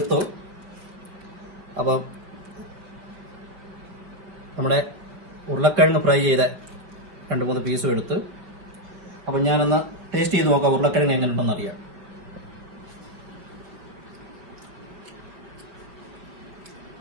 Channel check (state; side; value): late; left; 5.4 ms